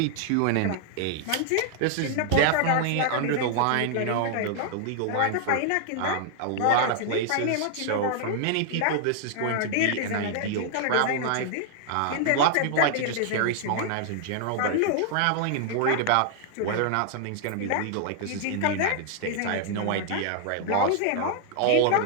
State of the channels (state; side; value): different; both; correlation 0.00